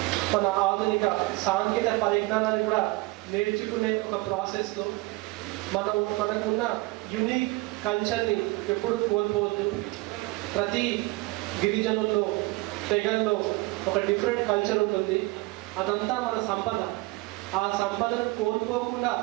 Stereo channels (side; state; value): left; quieter; 22.5 dB